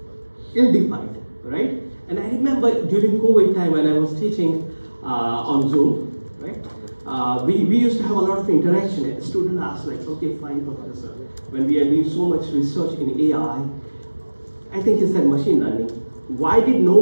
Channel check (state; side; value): inverted; both; correlation -1.00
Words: Ill-defined, right? And I remember during COVID time when I was teaching on Zoom, right? We used to have a lot of interaction. And the student asked like, okay, fine, professor, when we are doing so much research in AI, I think he said machine learning, why did no